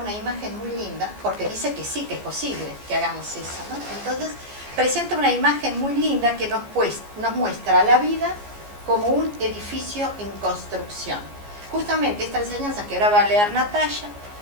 imagen muy linda, porque dice que sí, que es posible que hagamos eso, ¿no? Entonces, presenta una imagen muy linda que nos muestra la vida como un edificio en construcción. Justamente esta enseñanza que ahora va a leer Natalia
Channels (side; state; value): left; late; 14 ms